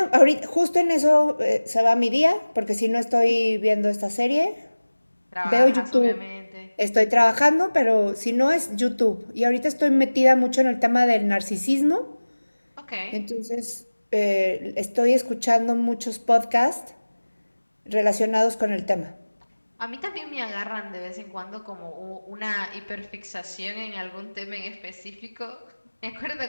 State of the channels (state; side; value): inverted; both; correlation -1.00